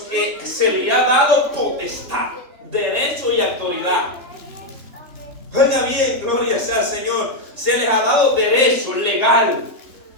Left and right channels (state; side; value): late; left; 3.4 ms